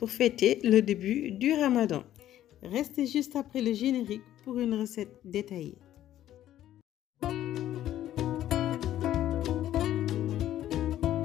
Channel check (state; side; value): quieter; right; 12.5 dB